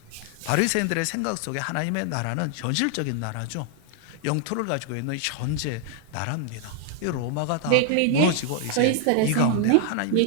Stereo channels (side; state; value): both; different; correlation 0.00